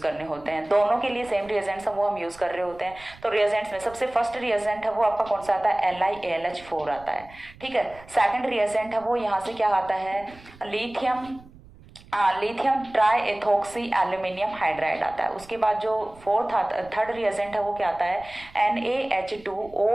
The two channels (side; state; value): right; noise; rumble, 22 dB below the sound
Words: होते हैं? दोनों के लिए सेम रिएजेंट्स वो हम यूज कर रहे होते हैं। तो रिएजेंट्स में सबसे फर्स्ट रिएजेंट है वो आपका कौन सा आता है? LiAlH4 आता है, ठीक है। सेकंड रिएजेंट है वो यहाँ से क्या आता है? Lithium try ethoxy aluminium hydride आता है। उसके बाद जो थर्ड रिएजेंट है वो क्या आता है?